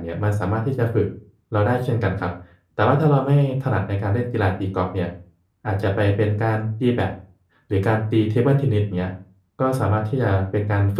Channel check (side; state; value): both; identical; correlation 1.00